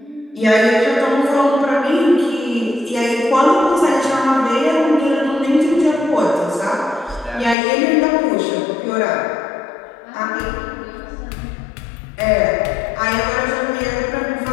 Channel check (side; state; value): right; drops out; at 7.6 s